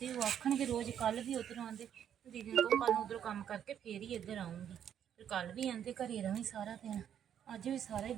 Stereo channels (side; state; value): left; quieter; 9.4 dB